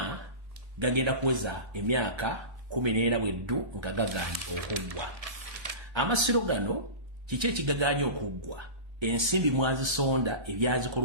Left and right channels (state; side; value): late; left; 1.3 ms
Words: gagenda kuweza emyaka 14 bweddu nga gaganye okuggwa. Amasiro gano kiki ekigaganye okuggwa? Ensimbi mwazisonda